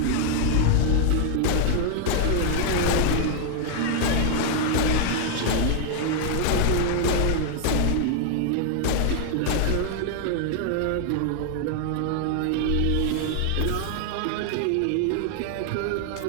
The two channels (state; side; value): different; both; correlation 0.00